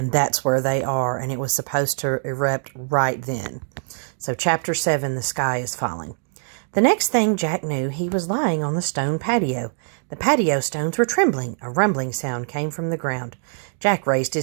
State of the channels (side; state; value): left; silent; digital silence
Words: that's where they are, and it was supposed to erupt right then. So chapter 7, the sky is falling. The next thing Jack knew, he was lying on the stone patio. The patio stones were trembling. A rumbling sound came from the ground. Jack raised